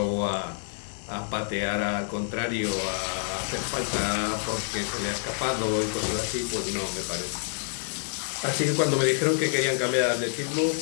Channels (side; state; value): right; silent; 60 dB below the other